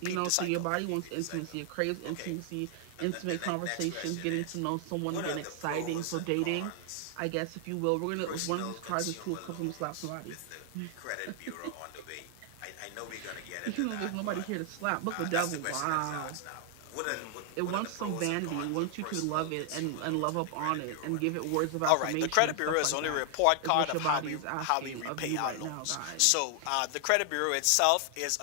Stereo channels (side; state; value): both; different; correlation 0.00